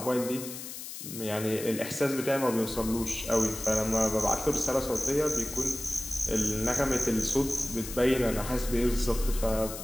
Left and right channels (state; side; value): noise; left; hiss, 10 dB below the sound